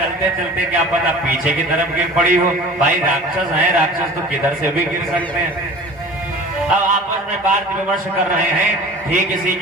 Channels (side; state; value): both; normal; correlation 0.41